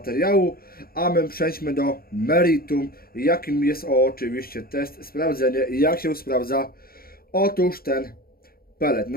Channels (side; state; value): right; late; 0.43 ms